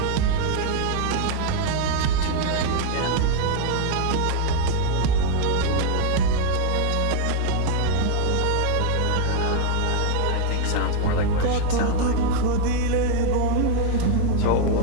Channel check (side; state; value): both; different; correlation 0.00